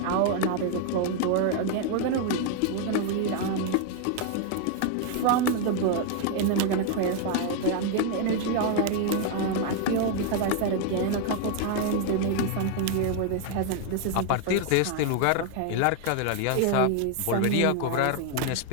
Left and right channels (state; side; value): different; both; correlation 0.00